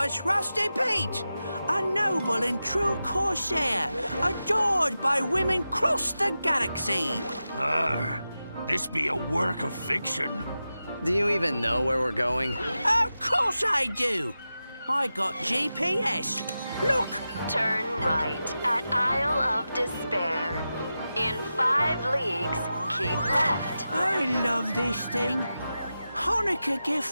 Rusty Pete, a noble and true corsair, adored by women across the galaxy. This be a work of fiction. Do you even know where we're going? Of course I do. I got GPS. Look. Turn right at Isle of Despair. In 5 leagues, keep left. I love this thing. Hanukkah gift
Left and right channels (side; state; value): both; inverted; correlation -0.92